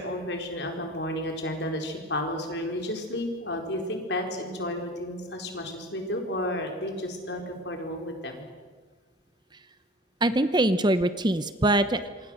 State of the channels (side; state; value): both; normal; correlation 0.42